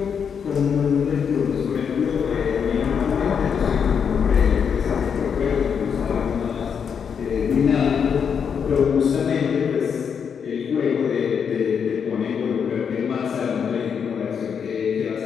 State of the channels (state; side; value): quieter; right; 7.0 dB